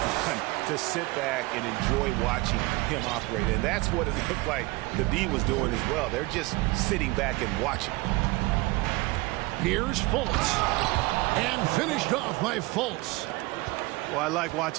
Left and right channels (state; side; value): quieter; left; 22.3 dB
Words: to sit back and enjoy watching him operate. And that's what it looked like the D was doing as well. They're just sitting back and watching. Here's Fultz. And finished off by Fultz. Well, I like